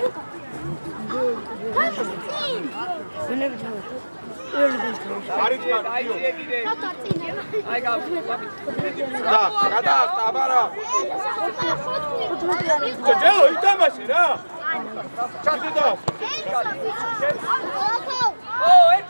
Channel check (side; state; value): both; inverted; correlation -1.00